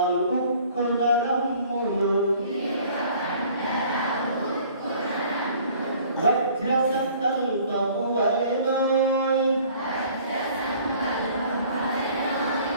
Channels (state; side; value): inverted; both; correlation -0.53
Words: ఉక్కున రమ్ములు వజ్ర సంకల్పము వలెనోయ్